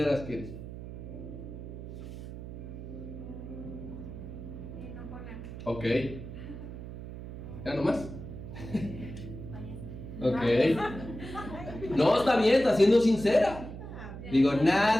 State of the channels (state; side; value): noise; right; hum, 10 dB below the sound